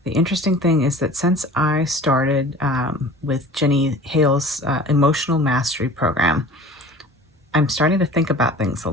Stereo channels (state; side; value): normal; both; correlation 0.43